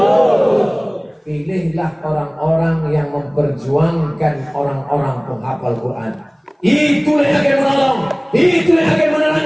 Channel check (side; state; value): both; identical; correlation 1.00